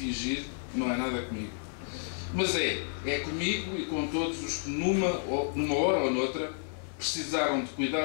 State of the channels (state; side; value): silent; right; digital silence